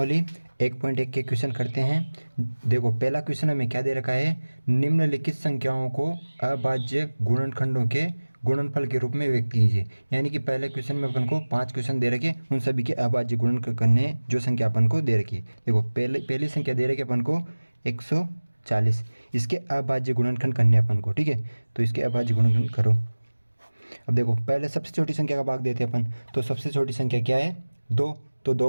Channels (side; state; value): both; inverted; correlation -1.00